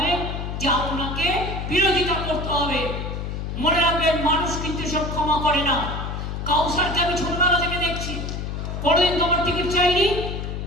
যে আপনাকে বিরোধিতা করতে হবে। মনে রাখবেন, মানুষ কিন্তু সব ক্ষমা করে না। কাউসারকে আমি ছোটবেলা থেকে দেখছি, কোনোদিন তো আমার টিকিট চাইনি,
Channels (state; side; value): noise; left; hum, 5 dB below the sound